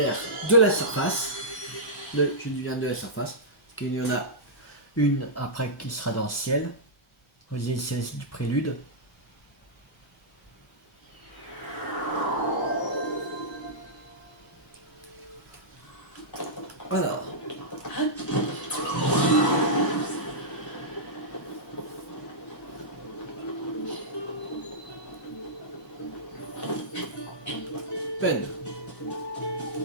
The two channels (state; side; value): normal; both; correlation -0.13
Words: de la surface. Je dis bien de la surface. Parce qu'il y en a une après qui sera dans le ciel. Aux îles célestes du prélude. Alors. Peine.